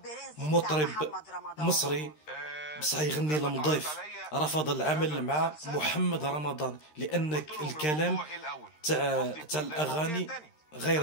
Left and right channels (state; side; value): late; right; 13 ms